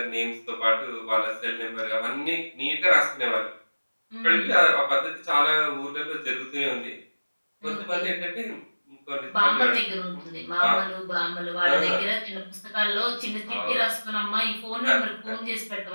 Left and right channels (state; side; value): inverted; both; correlation -1.00